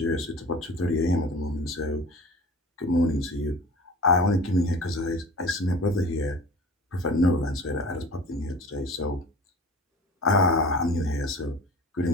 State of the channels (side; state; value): both; normal; correlation 0.40